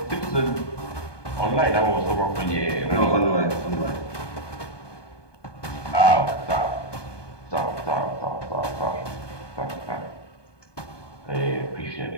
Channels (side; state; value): right; late; 1.2 ms